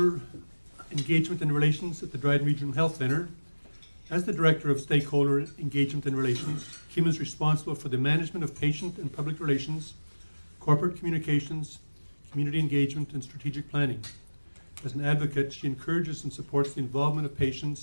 engagement and relations at the Dryden Regional Health Centre. As the director of stakeholder engagement and relations, Kim is responsible for the management of patient and public relations, corporate communications, community engagement, and strategic planning. As an advocate, she encourages and supports the involvement of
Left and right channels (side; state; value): both; inverted; correlation -1.00